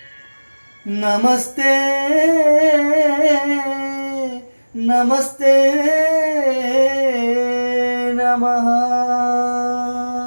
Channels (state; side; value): inverted; both; correlation -1.00